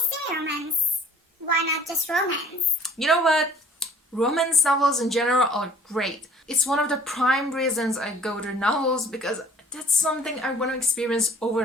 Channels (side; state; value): both; normal; correlation 0.52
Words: steamy romance? Why not just romance? You know what? Romance novels in general are great. It's one of the prime reasons I go to novels, because that's something I want to experience over